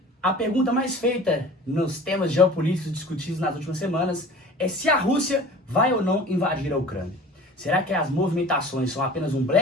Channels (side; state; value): both; normal; correlation 0.42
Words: A pergunta mais feita nos temas geopolíticos discutidos nas últimas semanas é se a Rússia vai ou não invadir a Ucrânia. Será que as movimentações são apenas um